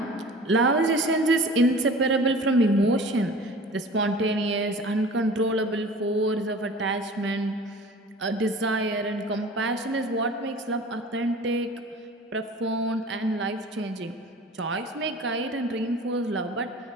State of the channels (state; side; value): normal; both; correlation 0.42